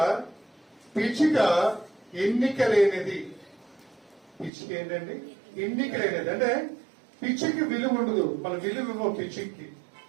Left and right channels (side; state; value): left; drops out; at 4.5 s